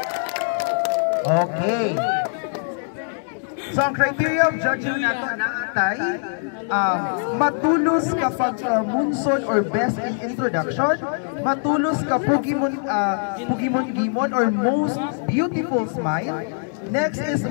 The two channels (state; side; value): silent; right; digital silence